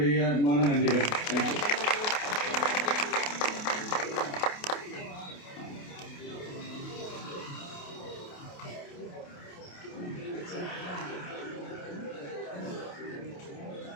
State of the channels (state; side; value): late; right; 28 ms